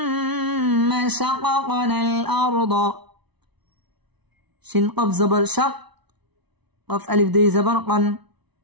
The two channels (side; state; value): left; late; 0.99 ms